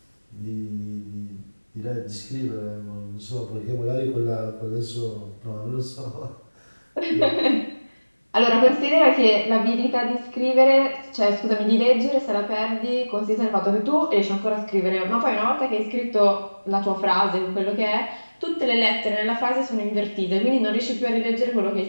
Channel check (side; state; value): both; inverted; correlation -1.00